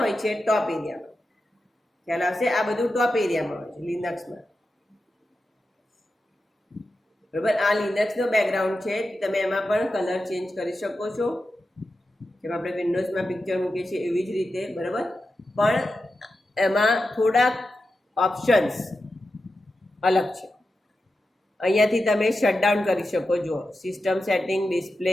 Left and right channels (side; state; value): both; normal; correlation 0.91